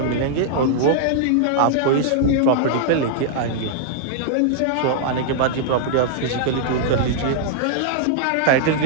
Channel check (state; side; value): different; both; correlation -0.01